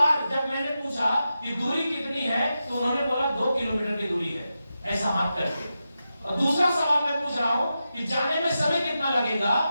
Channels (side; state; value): both; inverted; correlation -0.90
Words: जब मैंने पूछा कि दूरी कितनी है तो उन्होंने बोला 2 किलोमीटर की दूरी है, ऐसा हाथ करके। और दूसरा सवाल मैं पूछ रहा हूं कि जाने में समय कितना लगेगा,